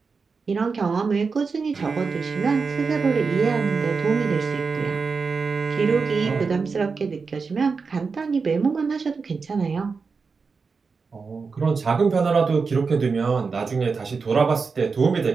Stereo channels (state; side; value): quieter; left; 4.9 dB